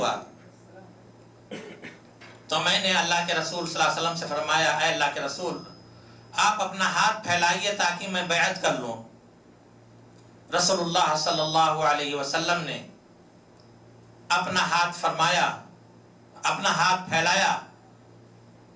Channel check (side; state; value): both; identical; correlation 1.00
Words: تو میں نے اللہ کے رسول صلی اللہ علیہ وسلم سے فرمایا اے اللہ کے رسول، آپ اپنا ہاتھ پھیلائیے تاکہ میں بیعت کر لوں۔ رسول اللہ صلی اللہ علیہ وسلم نے اپنا ہاتھ فرمایا، اپنا ہاتھ پھیلایا